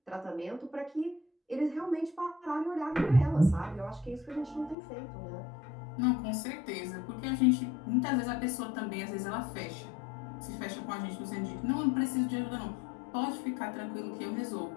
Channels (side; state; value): right; drops out; at 4.8 s